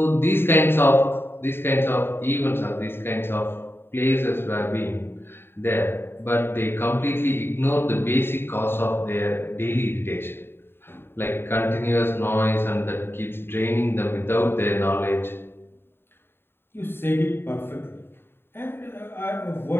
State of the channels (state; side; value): late; right; 0.11 ms